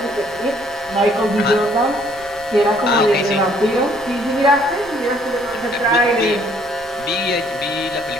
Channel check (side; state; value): left; noise; rumble, 24 dB below the sound